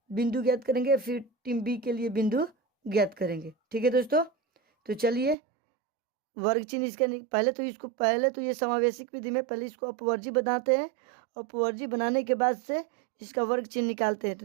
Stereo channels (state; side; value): drops out; left; at 5.4 s